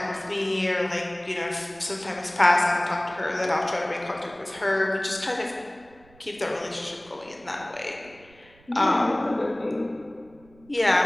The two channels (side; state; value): right; noise; rumble, 28 dB below the sound